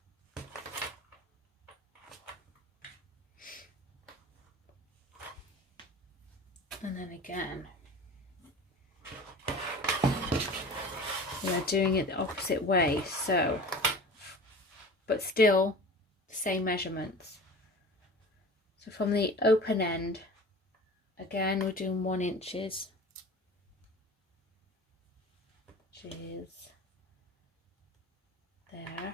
And then again, we're doing it the opposite way, so, but still the same measurements. So from the open end, again we're doing 1 inches, which is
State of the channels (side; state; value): both; normal; correlation 0.38